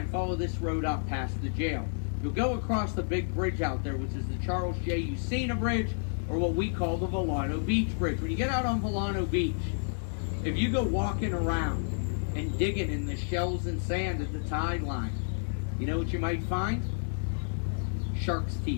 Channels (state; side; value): silent; right; digital silence